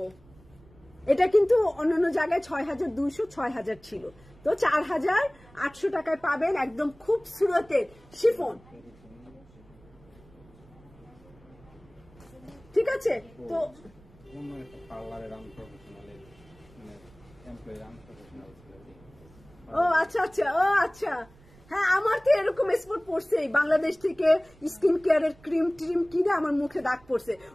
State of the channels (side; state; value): right; noise; rumble, 26 dB below the sound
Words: এটা কিন্তু অন্যান্য জায়গায় 6200 6000 ছিল, তো 4800 টাকায় পাবেন একদম খুবসুরতের শিফন। ঠিক আছে, তো ও আচ্ছা আচ্ছা, ও আচ্ছা, হ্যাঁ আমার তো এরকম স্পট পড়ছে, বাংলাদেশ থেকে স্কিন কেয়ারের ক্রিম ট্রিম কিনে আমার মুখে দাগ পড়ছে।